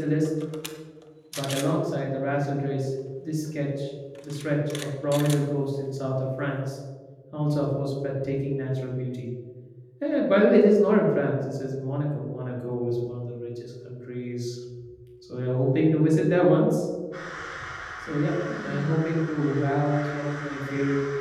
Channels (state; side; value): identical; both; correlation 1.00